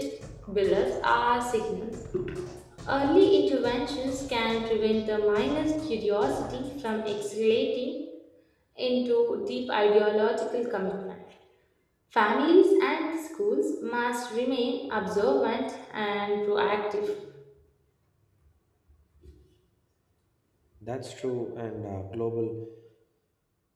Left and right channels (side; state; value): both; identical; correlation 1.00